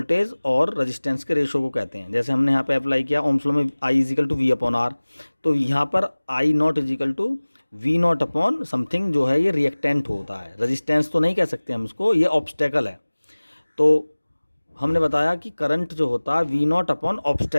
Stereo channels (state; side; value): inverted; both; correlation -1.00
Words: और रेजिस्टेंस के रेशो को कहते हैं। जैसे हमने यहाँ पे अप्लाई किया ओम्स लॉ में I equal to V upon R, तो यहाँ पर I not equal to V not upon something जो है ये रिएक्टेंट होता है, रेजिस्टेंस तो नहीं कह सकते हम इसको, ये ऑब्स्टेकल है। तो हमने बताया कि करंट जो होता है वी नॉट अपॉन